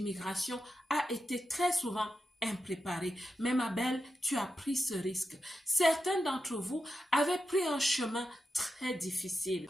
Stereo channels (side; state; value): both; normal; correlation 0.88